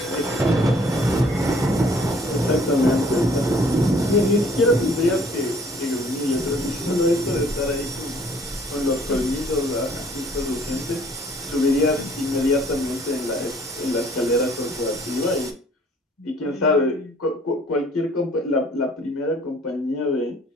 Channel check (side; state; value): both; normal; correlation 0.57